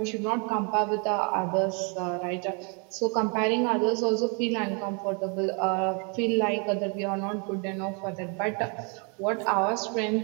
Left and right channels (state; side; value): quieter; left; 35.9 dB